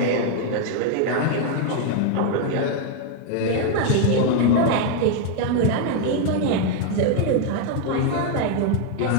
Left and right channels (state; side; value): different; both; correlation 0.01